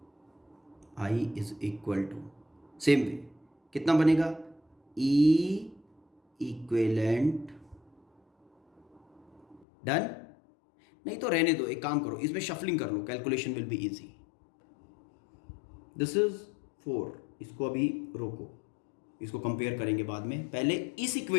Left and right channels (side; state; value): right; drops out; at 9.7 s